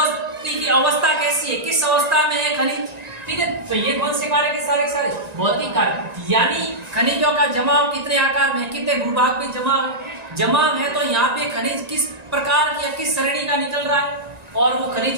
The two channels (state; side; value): late; left; 1.9 ms